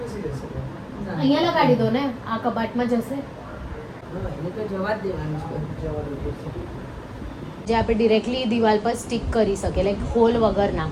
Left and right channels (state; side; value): identical; both; correlation 1.00